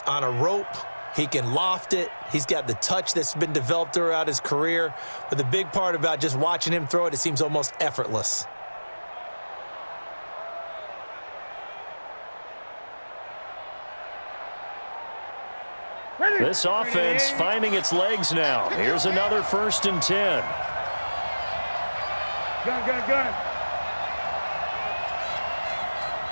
on a rope. He can loft it. He's got the touch that's been developed throughout his career. But the big part about just watching him throw it, it seems almost effortless. This offense finding its legs now. Here's another 1st and 10. Gun.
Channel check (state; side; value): inverted; both; correlation -1.00